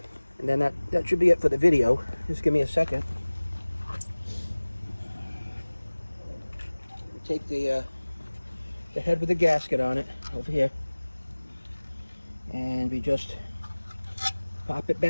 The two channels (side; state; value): both; inverted; correlation -1.00